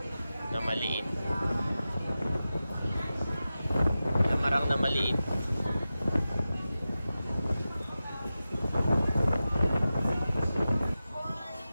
Na maliit. Lamarang na maliit.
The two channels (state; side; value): inverted; both; correlation -0.94